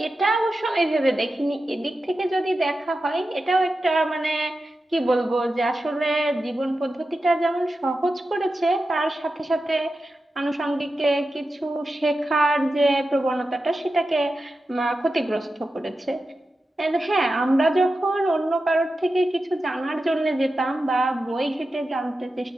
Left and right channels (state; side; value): normal; both; correlation 0.91